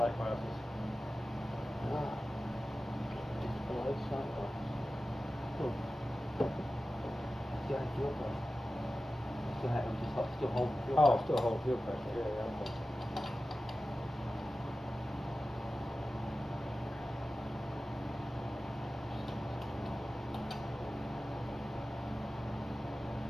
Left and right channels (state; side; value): normal; both; correlation 0.94